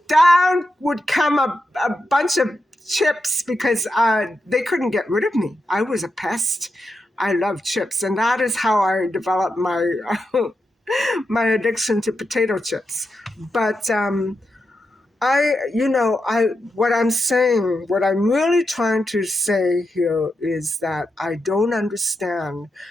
down would come a bunch of chips because they couldn't get rid of me. I was a pest. I love chips, and that is how I developed my my addiction to potato chips. But what I'm saying, what I'm really trying to say here is that I don't understand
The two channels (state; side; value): normal; both; correlation 0.87